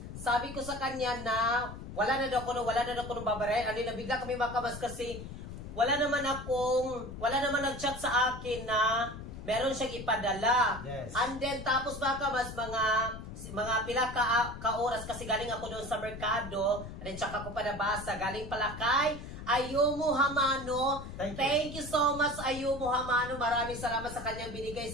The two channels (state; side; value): noise; left; rumble, 10 dB below the sound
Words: sabi ko sa kanya na wala na daw ko nung babaray. And then nabigla kami mga kabas kasi wala naman nag-chat sa akin na meron siyang ipadala. Yes. And then tapos mga kabas, mga pila ka oras kasi galing ako doon sa merkado. And then tsaka ko pa nabasa. Galing pala kay Ayumu Hamano. Thank you so much Ayumu Hamano. Maraming salamat sa kanyang binigay